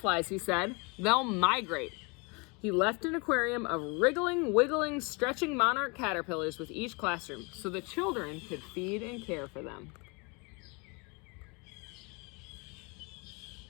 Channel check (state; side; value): quieter; right; 30.0 dB